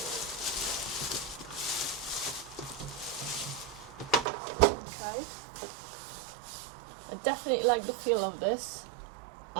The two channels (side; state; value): left; drops out; at 4.2 s